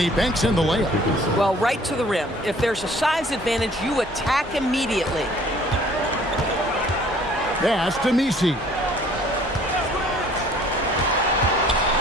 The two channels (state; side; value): normal; both; correlation 0.55